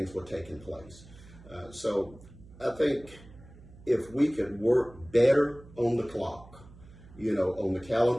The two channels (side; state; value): right; noise; hum, 21 dB below the sound